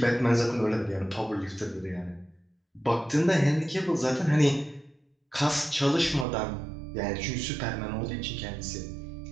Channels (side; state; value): left; drops out; at 6.2 s